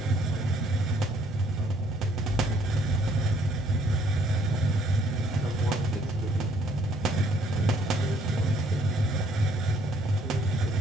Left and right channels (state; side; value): noise; right; hum, 21 dB below the sound